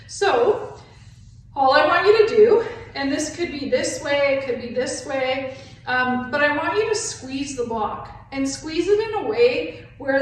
So all I want you to do And this could be this way, it could be this way, but I want you to squeeze the block and squeeze it in a way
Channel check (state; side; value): identical; both; correlation 1.00